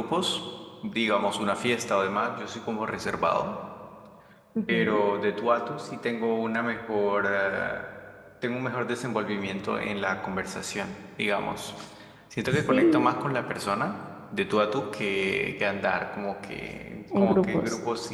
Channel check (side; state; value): both; identical; correlation 1.00